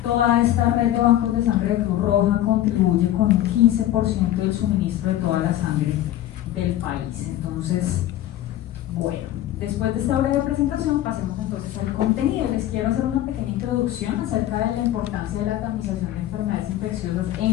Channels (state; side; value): quieter; right; 13.3 dB